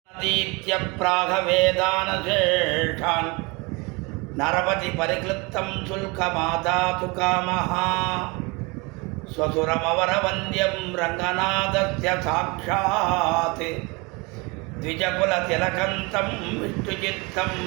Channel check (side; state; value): left; quieter; 27.3 dB